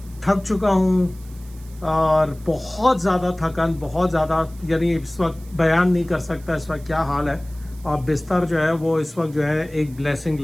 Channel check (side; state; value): right; noise; hiss, 25 dB below the sound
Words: थक चुका हूँ और बहुत ज़्यादा थकान, बहुत ज़्यादा, यानी इस वक्त बयान नहीं कर सकता इस वक्त क्या हाल है। और बिस्तर जो है वो इस वक्त जो है एक ब्लेसिंग